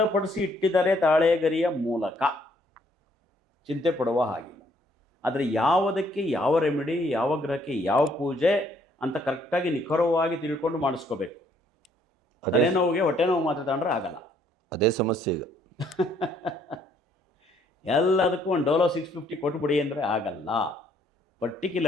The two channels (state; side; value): normal; both; correlation 0.66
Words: ಇಟ್ಟಿದ್ದಾರೆ ತಾಳೆಗರಿಯ ಮೂಲಕ. ಚಿಂತೆ ಪಡುವ ಹಾಗಿಲ್ಲ. ಆದರೆ ಯಾವುದಕ್ಕೆ ಯಾವ ರೆಮಿಡಿ, ಯಾವ ಗ್ರಹಕ್ಕೆ ಯಾವ ಪೂಜೆ ಅಂತ ಕರೆಕ್ಟಾಗಿ ನಿಖರವಾಗಿ ತಿಳ್ಕೊಂಡು ಮಾಡಿಸ್ಕೋಬೇಕು. ತಲೆನೋವಿಗೆ ಹೊಟ್ಟೆ ನೋವು ಮಾತ್ರ ತಗೊಂಡ್ರೆ ಆಗಲ್ಲ. ಅದೇ ಸಮಸ್ಯೆ ಈಗ. ಎಲ್ಲದಕ್ಕೂ ಒಂದು ಡೋಲೋ 650 ಕೊಟ್ಬಿಡಿ ಅಂದರೆ ಆಗಲ್ಲ.